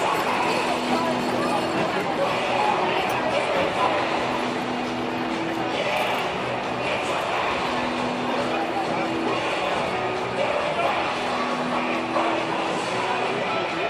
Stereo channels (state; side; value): identical; both; correlation 1.00